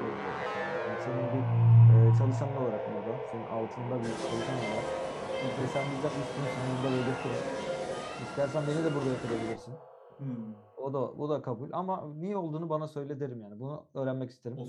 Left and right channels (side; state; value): both; identical; correlation 1.00